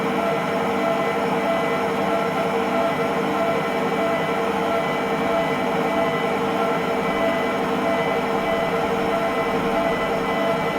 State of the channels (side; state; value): both; identical; correlation 1.00